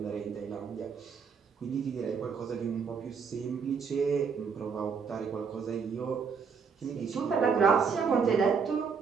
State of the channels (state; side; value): quieter; left; 5.9 dB